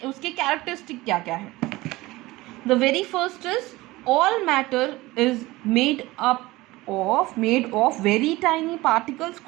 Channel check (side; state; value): left; quieter; 19.7 dB